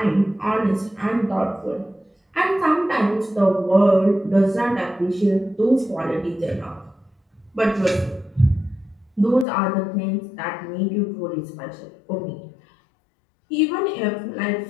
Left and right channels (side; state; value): right; drops out; at 9.5 s